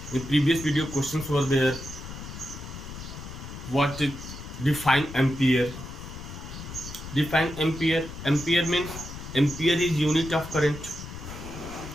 In previous video questions were there. What it define ampere? Define ampere. Ampere means ampere is unit of current,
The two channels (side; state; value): left; noise; rumble, 11 dB below the sound